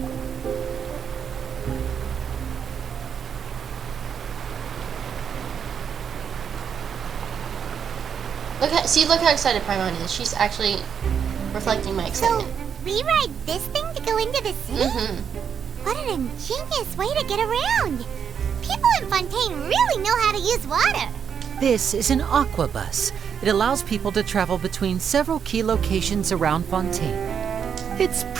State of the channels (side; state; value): left; quieter; 7.5 dB